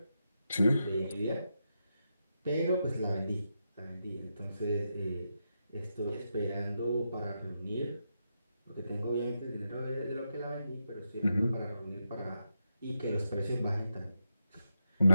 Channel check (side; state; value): both; inverted; correlation -0.85